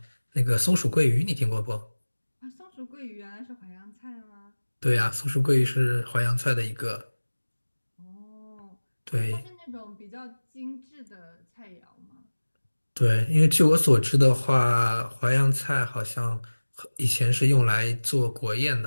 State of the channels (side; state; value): both; inverted; correlation -1.00